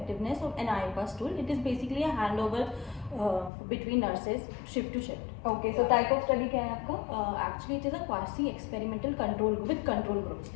of an iPass tool. It is basically a handover between nurses shift to shift. Okay, so type of study क्या है आपका? Actually, it is a quasi experimental control group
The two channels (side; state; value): right; drops out; at 3.5 s